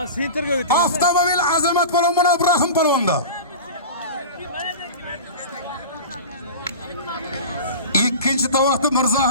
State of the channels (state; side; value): inverted; both; correlation -0.31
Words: sentrga o'ting. Avtomobil Azamat polvon bilan Ibrahim polvonda. Ikkinchi tovoqni